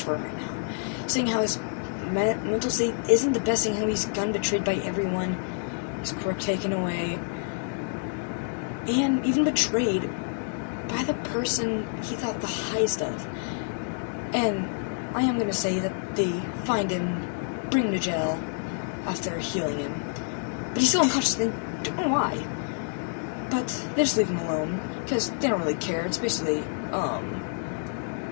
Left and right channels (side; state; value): right; silent; 60 dB below the other